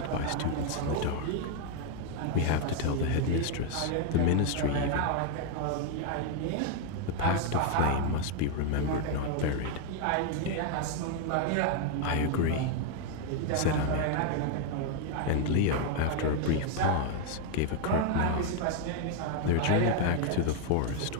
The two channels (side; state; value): both; different; correlation 0.01